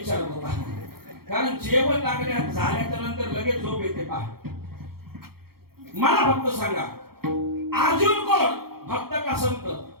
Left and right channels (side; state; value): left; late; 0.94 ms